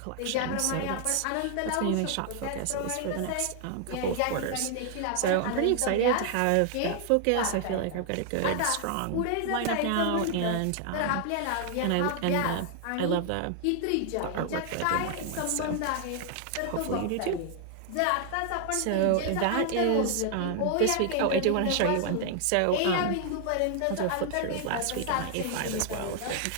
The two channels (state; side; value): different; both; correlation 0.00